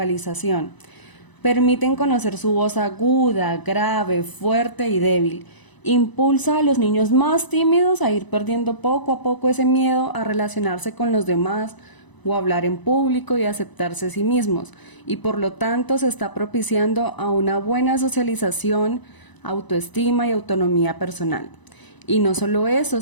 Permiten conocer su voz aguda, grave, fuerte y débil. Impulsa a los niños más tímidos a ir perdiendo poco a poco ese miedo a relacionarse con los demás o hablar en público y aceptarse a sí mismos, y por lo tanto se está propiciando a una buena socialización, autoestima y autonomía personal. Y no solo eso,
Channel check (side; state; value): right; late; 1.0 ms